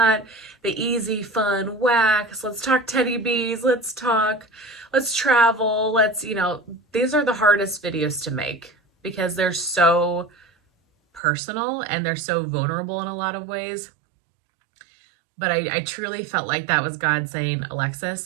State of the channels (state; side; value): drops out; left; at 11.2 s